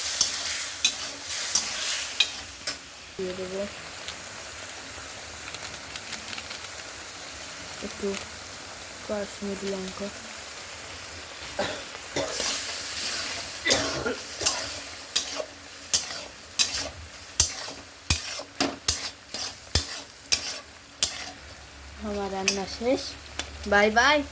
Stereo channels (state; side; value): identical; both; correlation 1.00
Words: দিয়ে দেবো একটু কাশ্মীরি লঙ্কা, আমার রান্না শেষ। Bye bye.